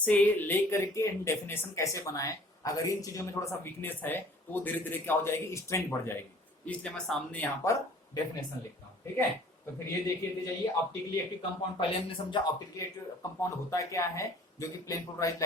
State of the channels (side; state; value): both; normal; correlation 0.52